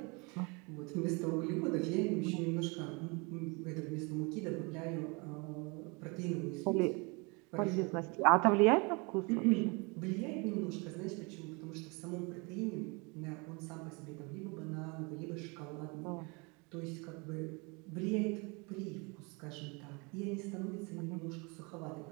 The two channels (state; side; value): quieter; left; 29.7 dB